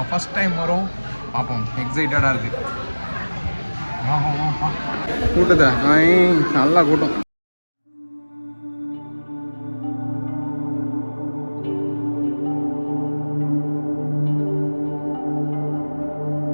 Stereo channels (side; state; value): both; inverted; correlation -1.00